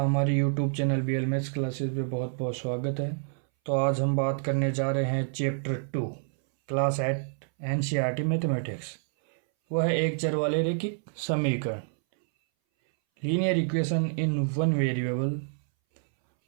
YouTube channel BL Maths Classes पे बहुत बहुत स्वागत है। तो आज हम बात करने जा रहे हैं चैप्टर 2 क्लास 8 NCERT मैथमेटिक्स। वह है एक चर वाले रैखिक समीकरण linear equation in one variable.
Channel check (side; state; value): left; silent; 59 dB below the other